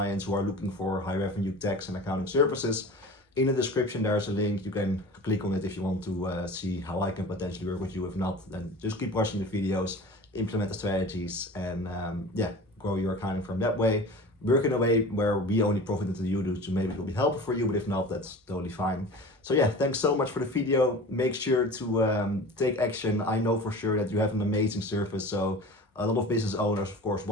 who are looking for high revenue tax and accounting services, in the description there's a link. You can click on it if you want to see how I can potentially work with you. If not, then just keep watching the videos, implement the strategies, and grow your accounting firm that way. Work in a way where we only profit until you do, so maybe it will be helpful for you, but if not, that's totally fine. So yeah, thanks so much for the video. Make sure to take action. I know for sure that you have an amazing service, so a lot of business owners of course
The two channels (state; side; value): normal; both; correlation 0.37